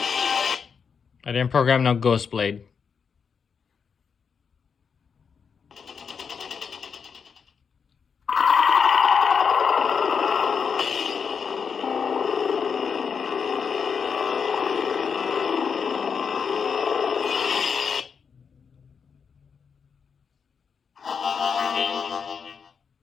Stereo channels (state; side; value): quieter; right; 6.2 dB